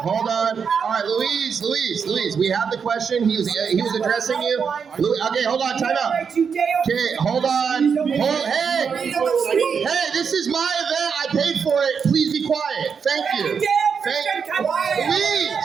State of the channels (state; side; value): quieter; left; 6.4 dB